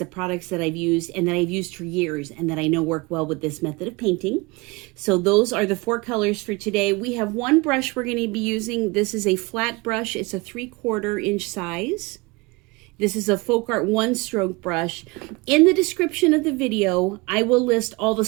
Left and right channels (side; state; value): left; quieter; 25.3 dB